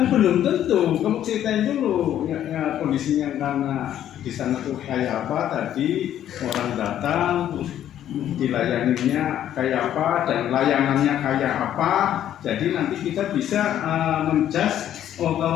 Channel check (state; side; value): quieter; right; 11.1 dB